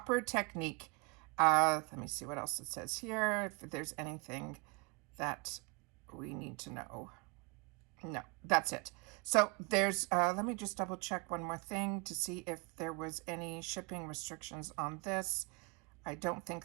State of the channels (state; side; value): quieter; left; 27.6 dB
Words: technique. Let me see what else it says here. If there's anything that we need to know. No, that's it. So there's, let me just double check one more thing to see if there was any shipping restrictions on this. I don't